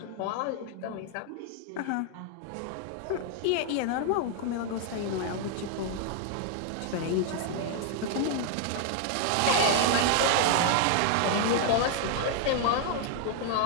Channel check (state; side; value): different; both; correlation 0.00